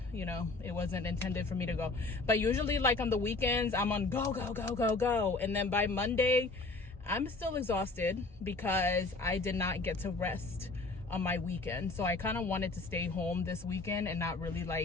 you know, it wasn't intended for me to go. But usually like on the weekends, I'm on go, go, go, go, go. And then by Monday, I'm still exhausted because I did not get to rest on my weekend. So I kind of wanted to stay home this weekend and not really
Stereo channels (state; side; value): quieter; right; 3.5 dB